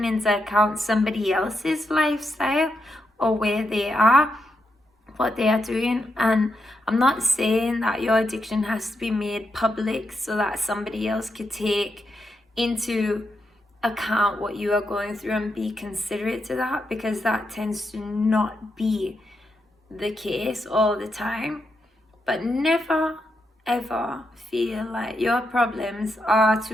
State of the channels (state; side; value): normal; both; correlation 0.83